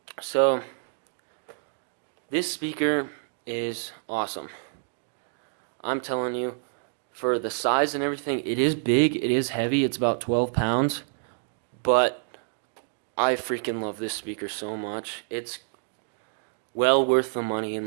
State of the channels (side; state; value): left; silent; digital silence